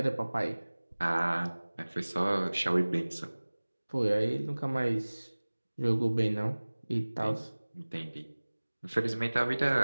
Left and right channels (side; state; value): both; inverted; correlation -1.00